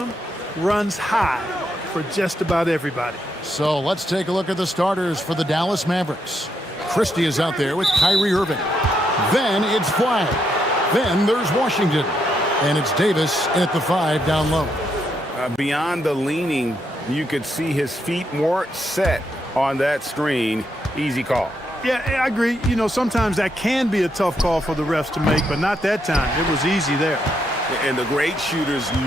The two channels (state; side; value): normal; both; correlation 0.79